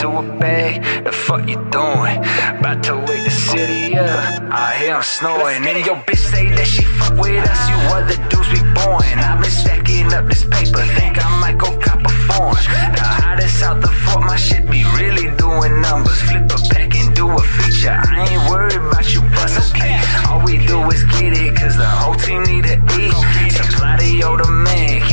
a bag, the fuck you doing? About to wake the city up. I hear I'm snowing, and your bitch say that she fuck with us. You other dudes be boring. I've been stacking up this paper, think I might go cop a foreign. The hottest out the fort, my shit be really doing numbers. Flip a pack and do a feature. I ain't worried about you plus okay. All we do is get it, cause the whole team need to eat. Supply the older man,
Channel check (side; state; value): both; inverted; correlation -1.00